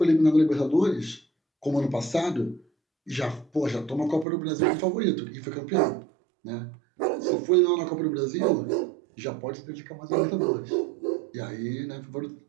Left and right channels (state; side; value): drops out; left; at 4.2 s